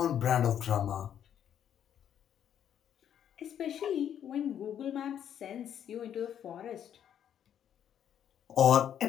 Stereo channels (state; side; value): quieter; right; 9.6 dB